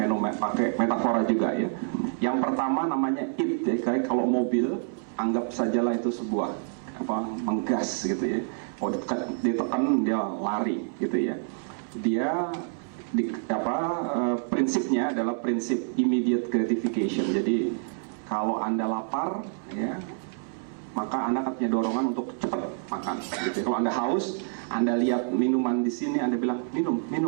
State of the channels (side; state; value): left; silent; 60 dB below the other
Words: pakai metafora juga ya. Yang pertama namanya it ya, kayak kalau mobil anggap sajalah itu sebuah menggas gitu ya. Kalau ditekan dia lari gitu ya. Dia prinsipnya adalah prinsip immediate gratification. Jadi kalau Anda lapar ya, maka Anda akan punya dorongan untuk cepat makan gitu. Kalau Anda haus, Anda lihat minuman di sini, Anda bilang minum